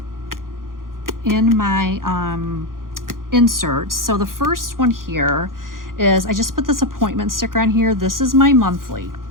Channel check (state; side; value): late; left; 0.91 ms